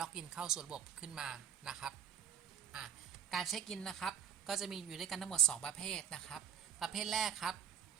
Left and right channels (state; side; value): quieter; left; 9.3 dB